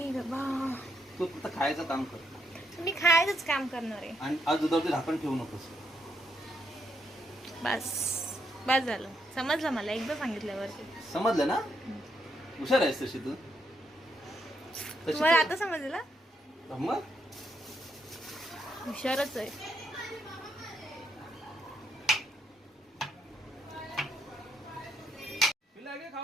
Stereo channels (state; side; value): normal; both; correlation 0.77